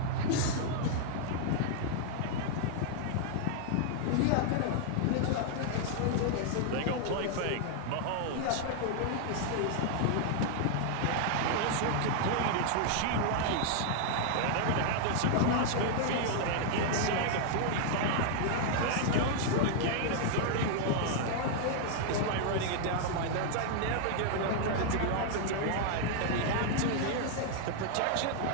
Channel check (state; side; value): different; both; correlation -0.01